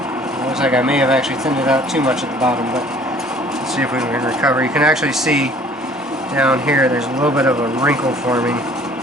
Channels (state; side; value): normal; both; correlation 0.53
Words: It looks like I may have actually thinned it out too much at the bottom, but let's see if we can recover. You can actually see down here there's a little bit of a wrinkle forming.